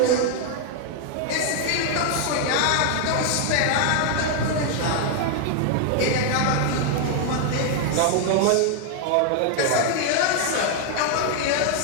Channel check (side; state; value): both; different; correlation 0.00